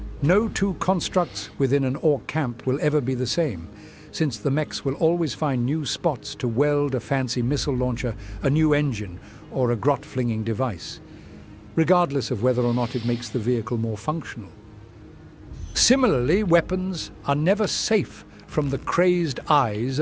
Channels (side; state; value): both; identical; correlation 1.00